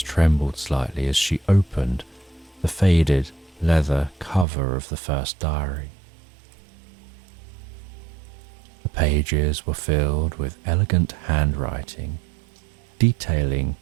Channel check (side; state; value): left; drops out; at 4.5 s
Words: slightly as she opened the faded leather cover of the first diary. The pages were filled with elegant handwriting, detailing